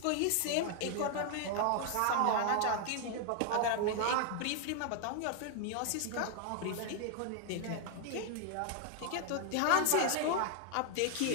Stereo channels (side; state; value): both; different; correlation 0.00